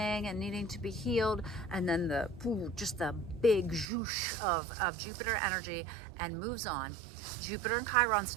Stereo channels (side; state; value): left; drops out; at 3.9 s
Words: and needing to be healed, and then just the big zhoosh of Jupiter energy, and moves on. Jupiter and Chiron